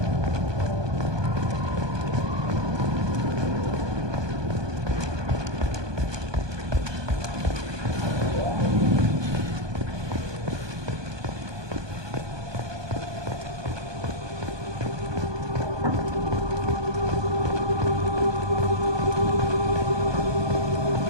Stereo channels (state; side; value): late; left; 1.2 ms